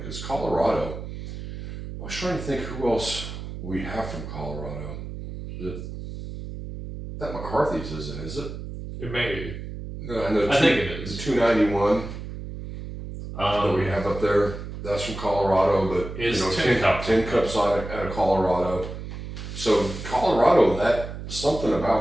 because Colorado. I was trying to think who else we have from Colorado. That McCarthy's isn't, is it? It may be. No, I think it is. The 291 that we have up there. That's from Colorado, but Is you know, Tin Cup's out of Colorado. So Colorado, that something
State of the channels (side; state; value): right; noise; hum, 9 dB below the sound